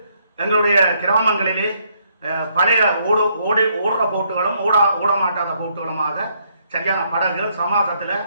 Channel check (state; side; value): inverted; both; correlation -0.71